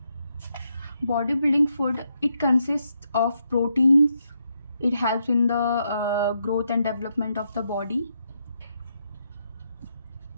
bodybuilding food, it consists of proteins. It helps in the growth and development of the body.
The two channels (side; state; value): both; inverted; correlation -0.80